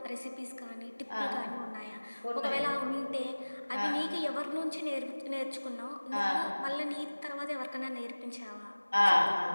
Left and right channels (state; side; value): inverted; both; correlation -1.00